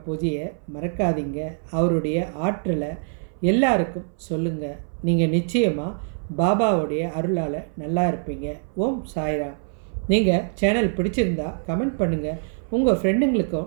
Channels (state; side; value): silent; left; 60 dB below the other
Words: பூஜையை மறக்காதீங்க. அவருடைய ஆற்றலை எல்லாருக்கும் சொல்லுங்கள். நீங்கள் நிச்சயமாக பாபாவுடைய அருளால் நல்லா இருப்பீங்க. ஓம் சாய்ராம். நீங்கள் சேனல் பிடிச்சிருந்தா கமெண்ட் பண்ணுங்கள். உங்கள்